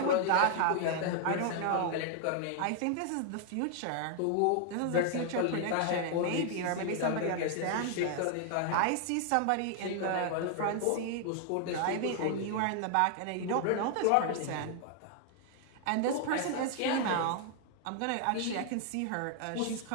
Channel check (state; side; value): different; both; correlation 0.00